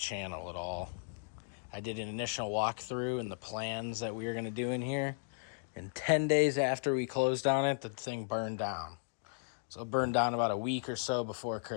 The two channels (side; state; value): right; silent; digital silence